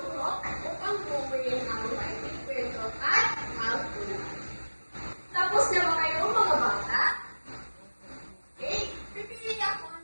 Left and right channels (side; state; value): both; inverted; correlation -1.00